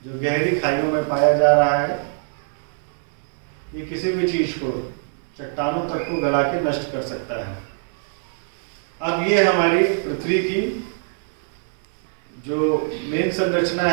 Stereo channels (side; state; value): left; silent; 63 dB below the other